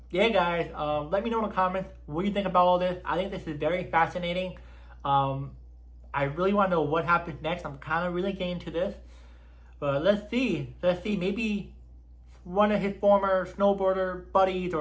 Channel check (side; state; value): both; identical; correlation 1.00